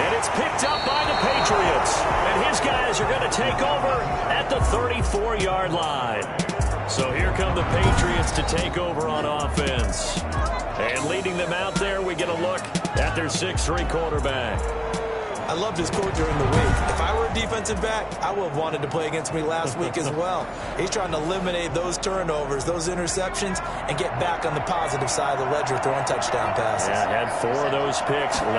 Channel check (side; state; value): both; identical; correlation 1.00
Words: And it's picked up by the Patriots. And his guys are going to take over at the 34-yard line. So here come the Patriots to take over on offense. And leading them out there, we get a look at their 6'3 quarterback. I loved his quote during the week. If I were a defensive back, I would have wanted to play against me last week as well. He's trying to eliminate those turnovers, those interceptions, and get back on the positive side of the ledger throwing touchdown passes. Yeah, had 4 of those picks,